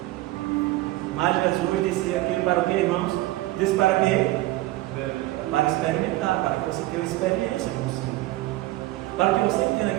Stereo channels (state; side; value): quieter; left; 17.5 dB